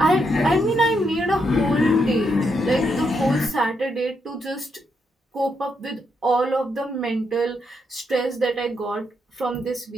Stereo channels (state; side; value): normal; both; correlation 0.79